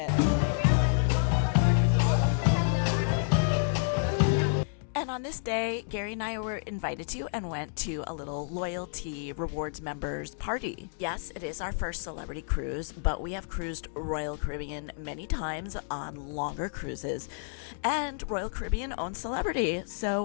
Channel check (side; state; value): right; silent; digital silence